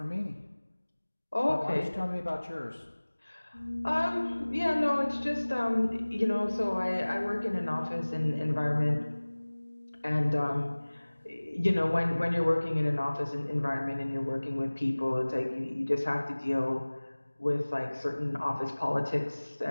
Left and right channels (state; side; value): inverted; both; correlation -1.00